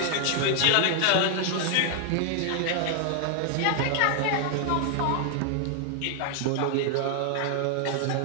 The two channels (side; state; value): both; different; correlation 0.00